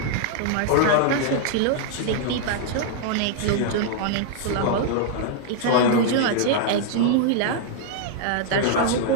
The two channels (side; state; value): both; different; correlation -0.01